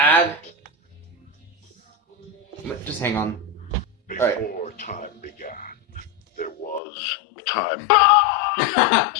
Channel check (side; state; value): right; drops out; at 6.8 s